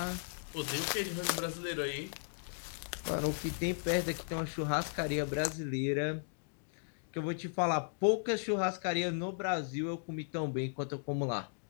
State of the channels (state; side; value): silent; right; digital silence